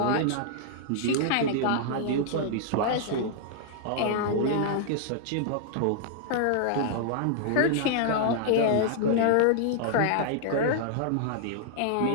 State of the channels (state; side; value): different; both; correlation -0.01